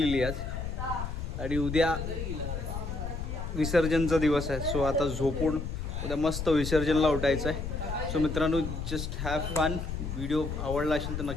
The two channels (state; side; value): noise; left; rumble, 5 dB below the sound